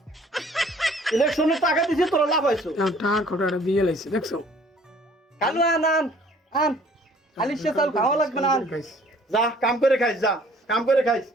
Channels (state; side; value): normal; both; correlation 0.56